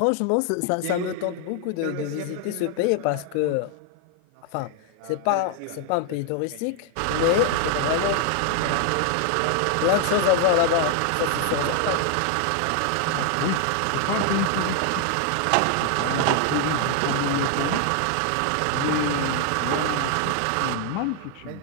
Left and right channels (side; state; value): both; different; correlation 0.00